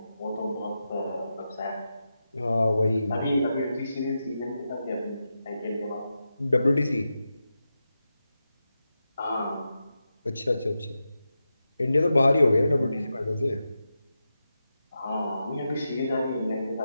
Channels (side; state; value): both; inverted; correlation -0.89